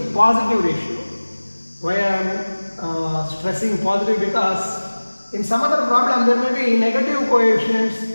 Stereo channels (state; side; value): inverted; both; correlation -1.00